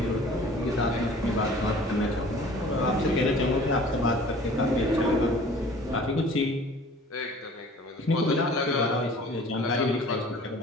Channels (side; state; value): both; normal; correlation 0.48